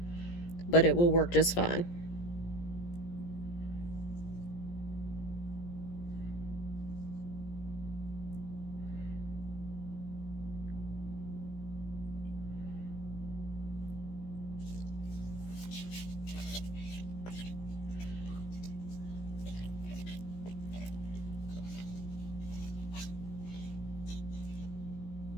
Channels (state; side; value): late; right; 17 ms